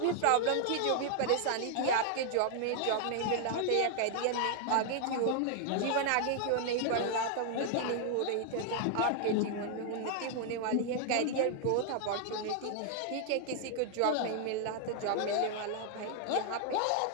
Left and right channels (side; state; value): both; different; correlation 0.00